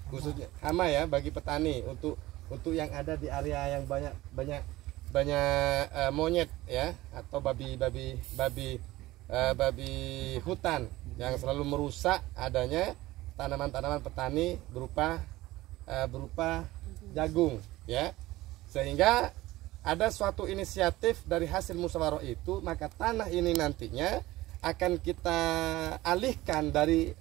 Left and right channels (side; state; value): left; quieter; 17.8 dB